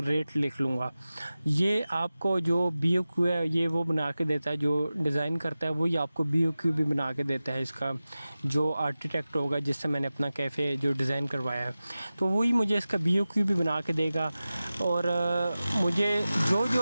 लिख लूँगा। ये आपको जो BOQ है ये वो बना के देता है, जो डिज़ाइन करता है वही आपको BOQ भी बना के देता है। इसका जो आर्किटेक्ट होगा जिससे मैंने अपना कैफ़े जो डिज़ाइन करवाया है तो वही मुझे इसका BOQ भी बना के देगा। और मुझे जो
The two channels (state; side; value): inverted; both; correlation -0.95